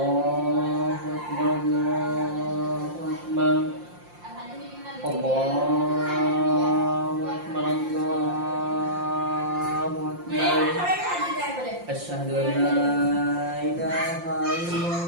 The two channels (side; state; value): left; late; 5.7 ms